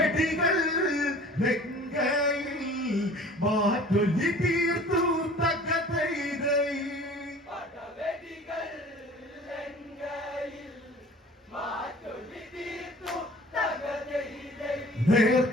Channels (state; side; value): normal; both; correlation 0.46